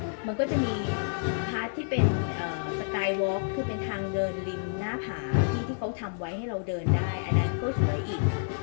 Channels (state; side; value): silent; right; digital silence